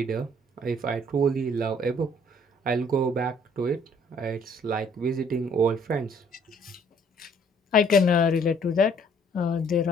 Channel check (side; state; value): both; normal; correlation 0.60